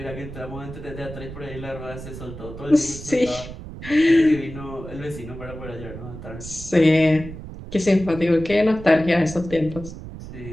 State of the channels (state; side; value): noise; right; rumble, 12 dB below the sound